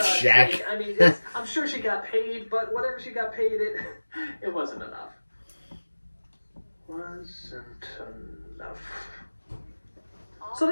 check. sake, I mean, I'm sure she got paid, but whatever she got paid, it wasn't enough. Wasn't enough. So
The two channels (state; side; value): inverted; both; correlation -1.00